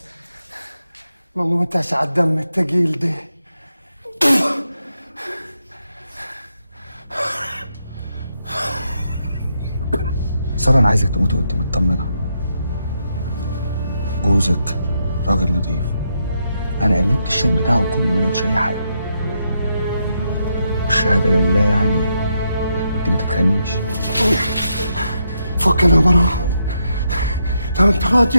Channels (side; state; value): both; inverted; correlation -0.81